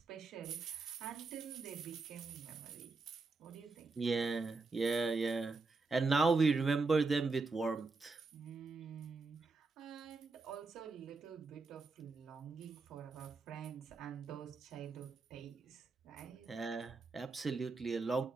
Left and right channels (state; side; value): quieter; left; 3.9 dB